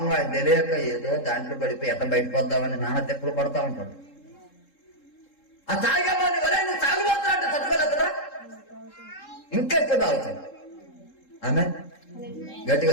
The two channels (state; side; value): late; right; 3.7 ms